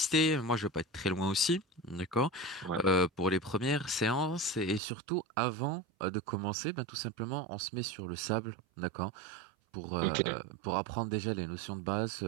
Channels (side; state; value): left; drops out; at 4.8 s